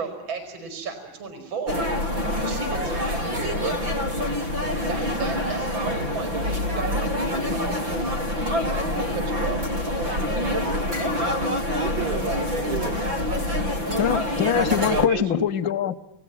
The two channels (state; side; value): late; left; 5.9 ms